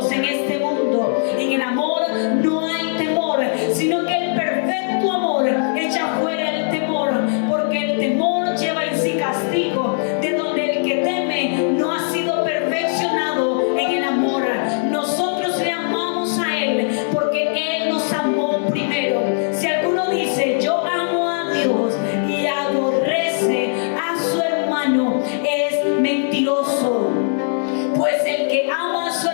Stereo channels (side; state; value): right; silent; digital silence